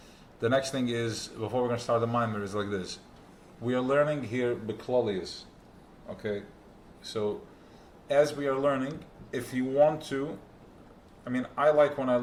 The next thing is, before we're going to start the mimer, is like this. We are learning here Beklolius. Okay? So, as we are learning, if you want to, I like when I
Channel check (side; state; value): both; identical; correlation 1.00